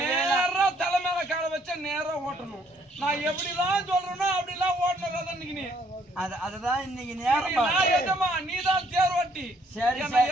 தலை மேல கால வச்சா நேரா ஓட்டணும். நான் எப்படிலாம் சொல்றேனோ அப்படிலாம் ஓட்டணும். இன்னைக்கு நீ அதுதான் இன்னைக்கு நேரம். எஜமா நீதான் தேர்வட்டி.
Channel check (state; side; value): normal; both; correlation 0.66